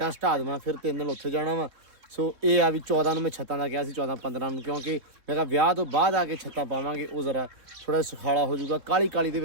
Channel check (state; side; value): late; left; 3.6 ms